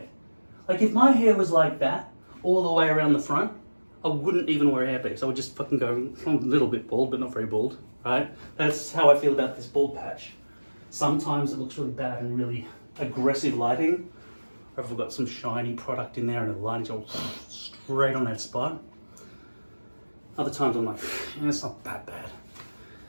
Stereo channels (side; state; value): both; inverted; correlation -1.00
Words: Like if my hair was like that, all the way around the front, I wouldn't even wear a hairpiece. I would just fucking go a little bit bald, but not very bald, right? That's how I feel about this bald patch. Sometimes it looks really bad and really aggressive lighting. Or if I've got some shiny product in there and the lighting's all straight on that spot. Other times I'm like, it's not that bad.